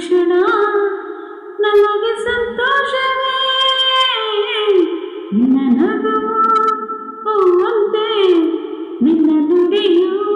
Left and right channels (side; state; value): both; identical; correlation 1.00